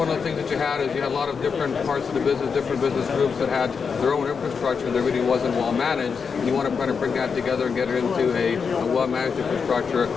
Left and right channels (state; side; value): quieter; right; 5.8 dB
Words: of the things that you had is you had a lot of different parts of the business, different business groups that had their own infrastructure that really wasn't well managed. And you want to kind of bring that together and get it into a well-managed infrastructure,